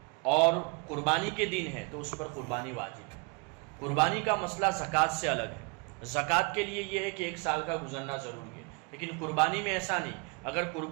اور قربانی کے دن ہے تو اس پر قربانی واجب ہے۔ قربانی کا مسئلہ زکوٰۃ سے الگ ہے۔ زکوٰۃ کے لیے یہ ہے کہ 1 سال کا گزرنا ضروری ہے، لیکن قربانی میں ایسا نہیں۔ اگر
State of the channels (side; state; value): left; quieter; 30.4 dB